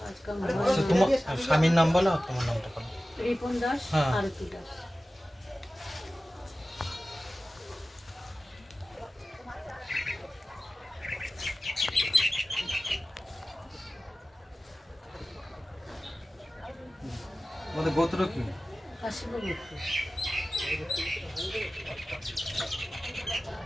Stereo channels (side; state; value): both; normal; correlation 0.96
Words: কাজ কাম আচ্ছা, তোমার স্বামীর নাম বলো, তোমার নামটা বলো। রিপন দাস, হ্যাঁ। আরতি দাস। তোমাদের গোত্র কি? কাশীপুর।